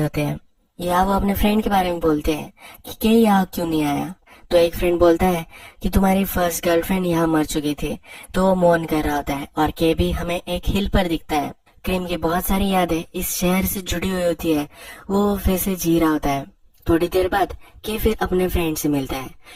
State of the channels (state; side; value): identical; both; correlation 1.00